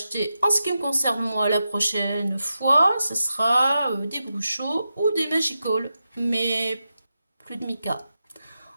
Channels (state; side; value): inverted; both; correlation -0.89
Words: en ce qui me concerne moi, la prochaine fois, ce sera des Bruchot ou des Magical. Mais plus de mica.